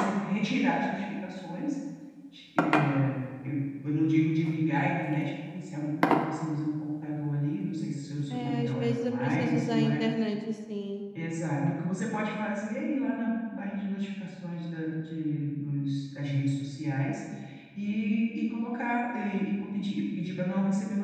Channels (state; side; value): identical; both; correlation 1.00